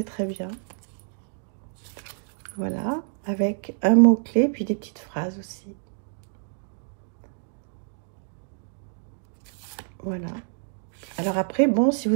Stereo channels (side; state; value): left; silent; digital silence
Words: très bien. Voilà, avec un mot-clé, puis des petites phrases aussi. Voilà. Alors après, bon, si